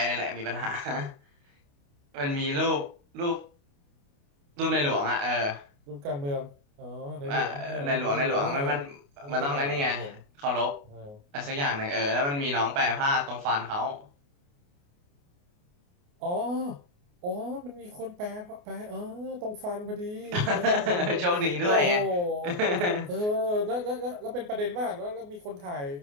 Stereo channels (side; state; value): left; late; 28 ms